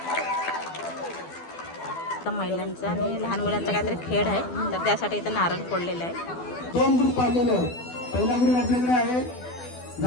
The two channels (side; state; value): right; late; 12 ms